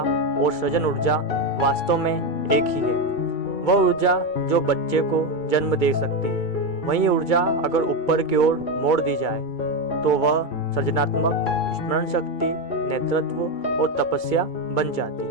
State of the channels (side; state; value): right; late; 2.3 ms